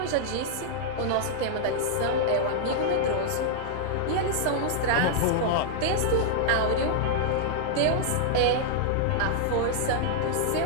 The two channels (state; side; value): different; both; correlation -0.01